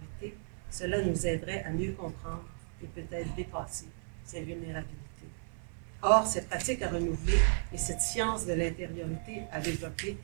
cela nous aiderait à mieux comprendre et peut-être dépasser ces vulnérabilités. Or, ces pratiques à renouveler et cette science de l'intériorité à développer,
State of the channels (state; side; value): silent; left; 55 dB below the other